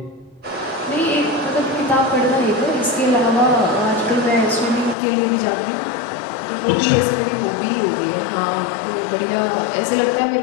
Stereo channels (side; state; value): right; drops out; at 5.0 s